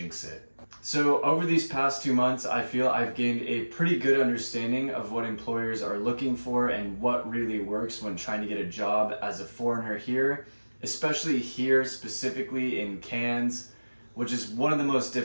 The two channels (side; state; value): both; inverted; correlation -1.00